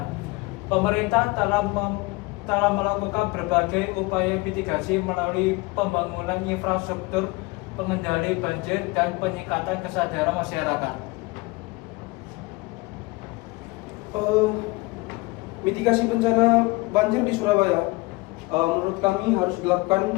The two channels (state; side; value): quieter; right; 23.7 dB